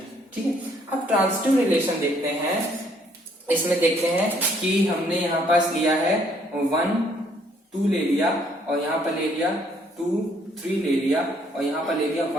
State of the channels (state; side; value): normal; both; correlation 0.66